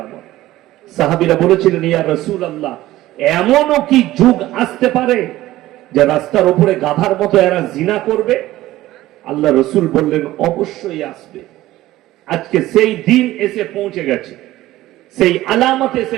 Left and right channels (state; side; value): quieter; left; 16.0 dB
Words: সাহাবীরা বলেছিলেন, ইয়া রাসূলুল্লাহ, এমনও কি যুগ আসতে পারে যে রাস্তার উপরে গাধার মতো এরা জিনা করবে? আল্লাহ রসুল বললেন, অবশ্যই আসবে। আজকে সেই দিন এসে পৌঁছে গেছে, সেই আলামত এসে